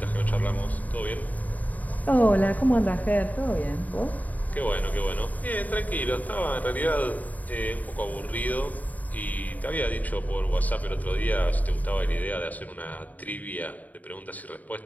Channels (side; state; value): right; late; 0.076 ms